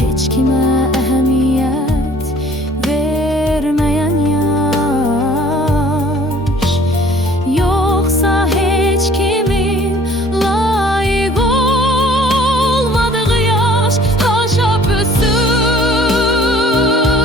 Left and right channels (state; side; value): normal; both; correlation 0.53